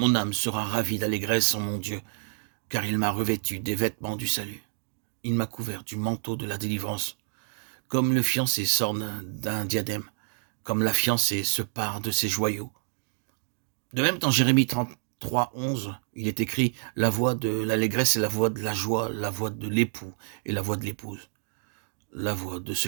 âme sera ravie d'allégresse en mon Dieu, car il m'a revêtu des vêtements du salut. Il m'a couvert du manteau de la délivrance, comme le fiancé s'orne d'un diadème, comme la fiancée se pare de ses joyaux. De même, dans Jérémie 33,11, il est écrit « La voix de l'allégresse est la voix de la joie, la voix de l'époux et la voix de l'épouse. La voix de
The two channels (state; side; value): silent; left; digital silence